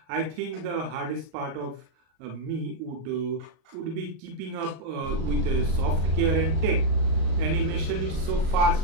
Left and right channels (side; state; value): left; late; 38 ms